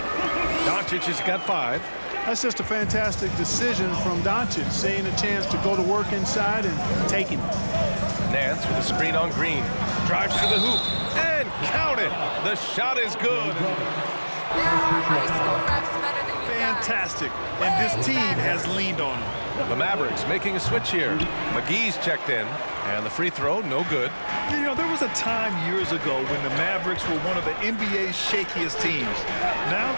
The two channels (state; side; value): inverted; both; correlation -1.00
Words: Doncic has got 5. That's just a fantastic decision from Doncic, seeing a chance to go to work inside and taking it. Nance with a screen on Green. Drives to the hoop and count it. The shot is good. Fantastic. And this team has leaned on him. The Mavericks making a switch here. McGee's checked in, and the free throw, no good. You know, there was a time years ago when the Mavericks were one of the NBA's shakiest teams. Now